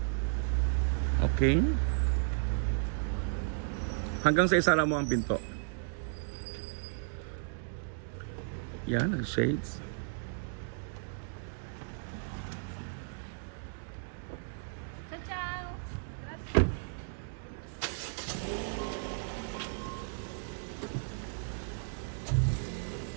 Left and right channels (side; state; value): left; silent; digital silence